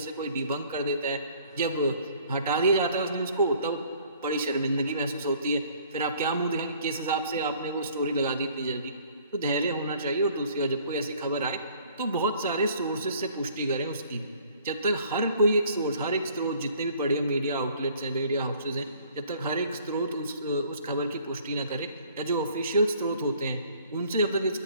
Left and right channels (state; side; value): inverted; both; correlation -0.57